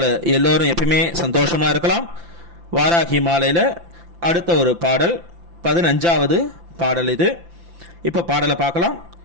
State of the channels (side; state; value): left; late; 5.9 ms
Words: எல்லோரும் எப்பயுமே சந்தோஷமாக இருக்கலாம். வாராகி மாலையில் அடுத்த ஒரு பாடல் 15வது பாடல் இது. இப்போ பாடலை பார்க்கலாம்.